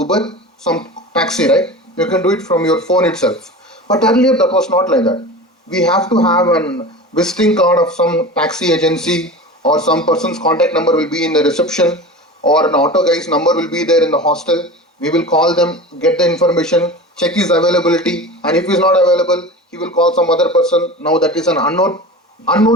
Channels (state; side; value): normal; both; correlation 0.32